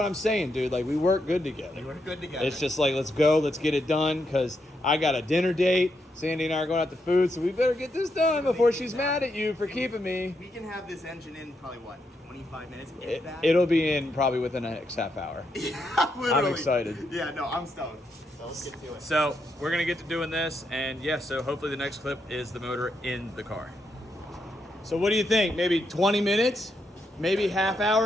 I'm saying, dude. Like, we work good together. We're good together. It's just like, let's go, let's get it done, because I got a dinner date. Sandy and I are going out to food, so we better get this done before she's mad at you for keeping me. We can have this engine in probably what, 25 minutes? If that? It'll be in probably within the next half hour. Literally. I'm excited. Yeah, no, I'm stoked. So let's get to it. So, we're going to get to doing this, and yeah, so hopefully the next clip is the motor in the car. So what do you think? Maybe 20 minutes? Maybe half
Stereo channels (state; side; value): normal; both; correlation 0.81